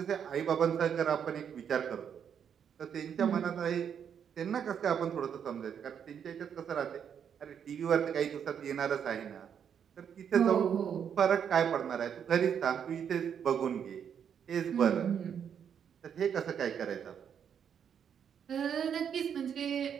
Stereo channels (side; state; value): left; quieter; 8.0 dB